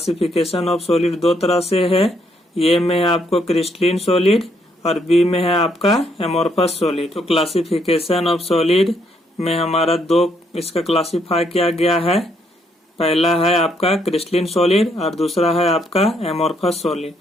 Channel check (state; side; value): normal; both; correlation 0.72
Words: ऑफ सॉलिड दो तरह से है। ए में है आपको क्रिस्टलिन सॉलिड और बी में है आपका एमोर्फस सॉलिड। तो क्लासिफिकेशन ऑफ सॉलिड में हमारा दो इसका क्लासिफाई किया गया है। पहला है आपका क्रिस्टलिन सॉलिड और दूसरा है आपका एमोर्फस सॉलिड।